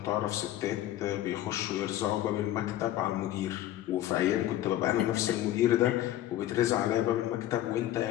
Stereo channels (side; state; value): right; quieter; 13.4 dB